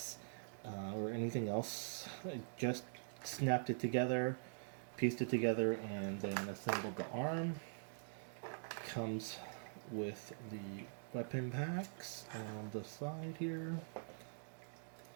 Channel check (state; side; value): silent; left; digital silence